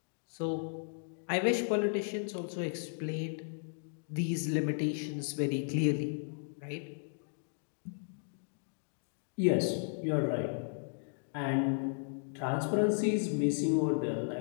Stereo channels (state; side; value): silent; right; digital silence